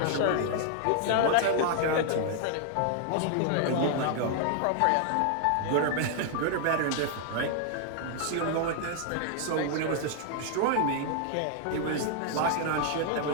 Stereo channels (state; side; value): different; both; correlation 0.00